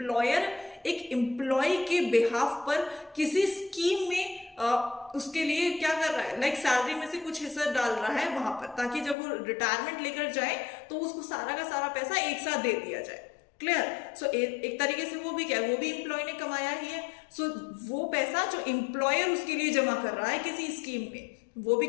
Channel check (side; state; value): right; drops out; at 9.2 s